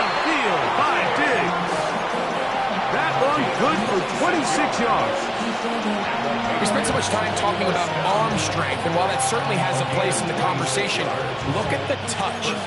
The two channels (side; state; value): both; identical; correlation 1.00